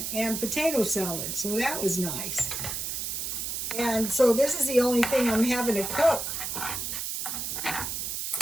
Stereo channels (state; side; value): noise; right; hiss, 3 dB below the sound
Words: and potato salad, so that was nice. And so this is the only thing I'm having to cook.